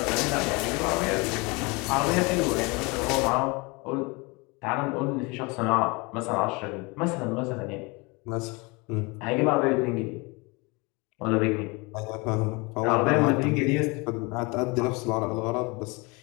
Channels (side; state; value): right; quieter; 27.3 dB